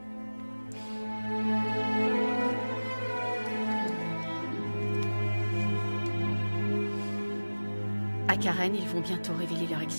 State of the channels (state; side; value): inverted; both; correlation -1.00